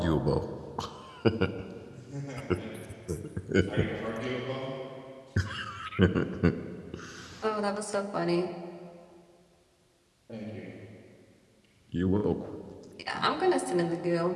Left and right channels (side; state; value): both; identical; correlation 1.00